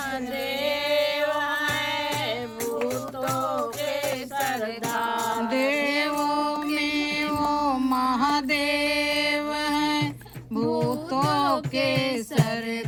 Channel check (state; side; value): identical; both; correlation 1.00